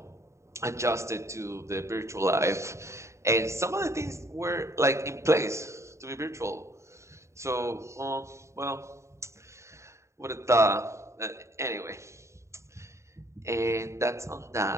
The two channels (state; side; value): late; left; 0.14 ms